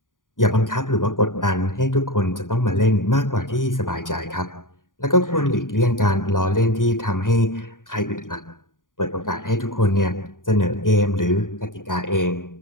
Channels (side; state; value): right; late; 0.89 ms